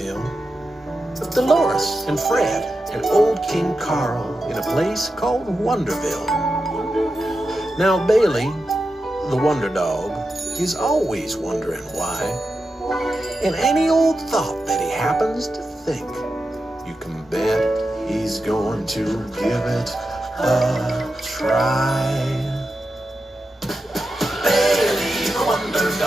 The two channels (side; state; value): both; normal; correlation 0.90